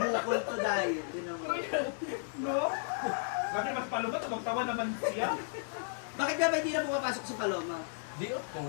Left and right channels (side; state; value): right; silent; digital silence